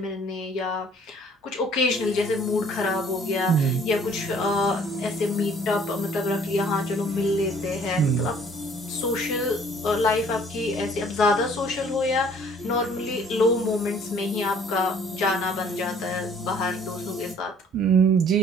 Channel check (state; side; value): normal; both; correlation 0.57